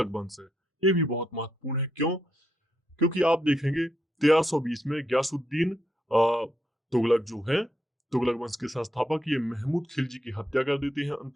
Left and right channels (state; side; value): normal; both; correlation 0.80